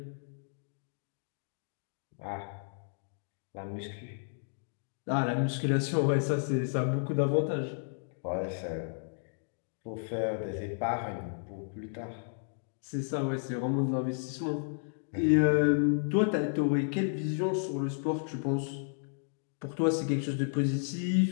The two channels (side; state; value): right; silent; digital silence